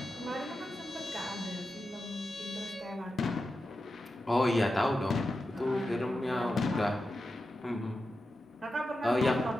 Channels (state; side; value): normal; both; correlation 0.90